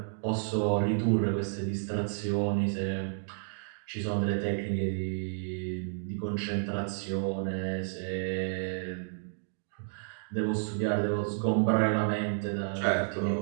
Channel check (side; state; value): left; silent; digital silence